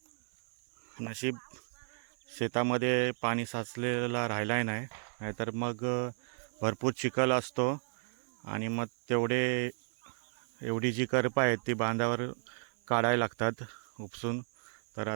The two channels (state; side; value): silent; left; 56 dB below the other